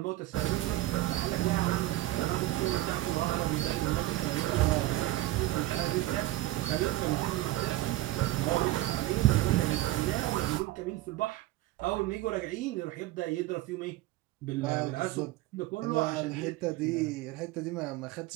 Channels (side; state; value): left; quieter; 16.6 dB